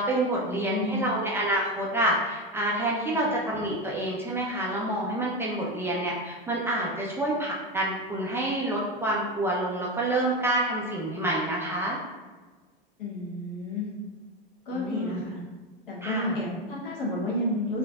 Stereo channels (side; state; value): both; normal; correlation 0.17